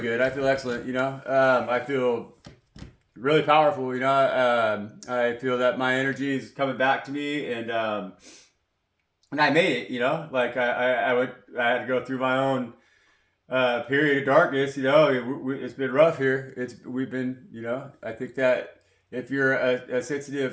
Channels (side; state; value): both; identical; correlation 1.00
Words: I feel excellent. I feel really powerful. I feel that my energy is coming back to me, and I made it. Like I had to go through my own period of darkness. It's been rough here. We've been. I think that if you're a